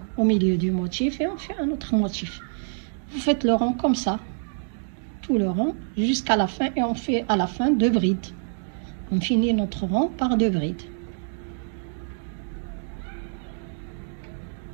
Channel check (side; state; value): left; silent; digital silence